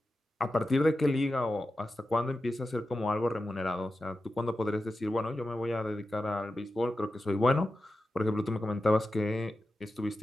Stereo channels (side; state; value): both; normal; correlation 0.92